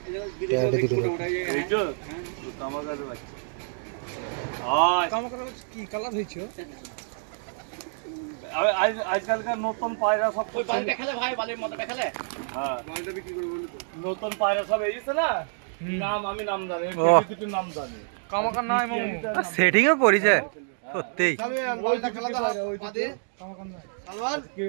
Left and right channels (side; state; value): left; silent; digital silence